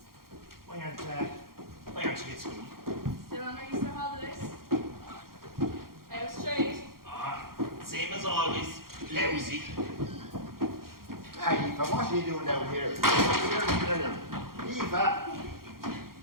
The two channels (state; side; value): late; left; 0.92 ms